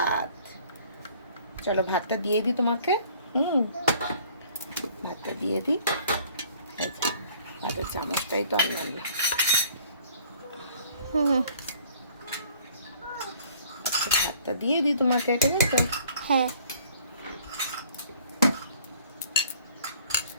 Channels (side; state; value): both; inverted; correlation -0.56